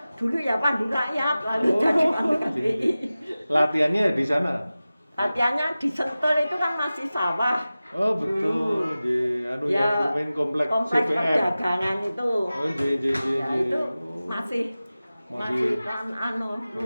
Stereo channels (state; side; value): inverted; both; correlation -0.96